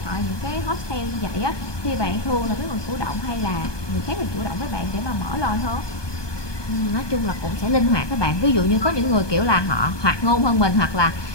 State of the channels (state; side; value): late; right; 1.2 ms